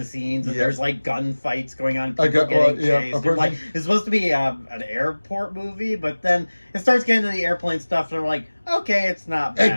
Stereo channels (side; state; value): both; inverted; correlation -1.00